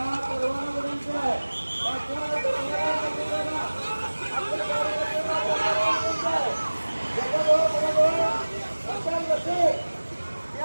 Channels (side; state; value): both; inverted; correlation -1.00